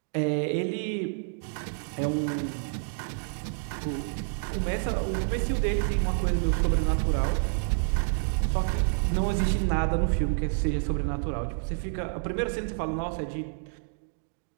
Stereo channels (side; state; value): left; silent; digital silence